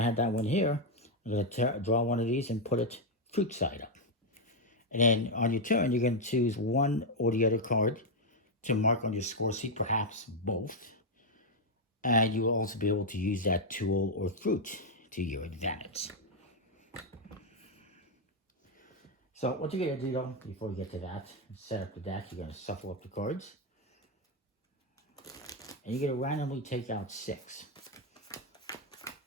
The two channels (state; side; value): normal; both; correlation 0.01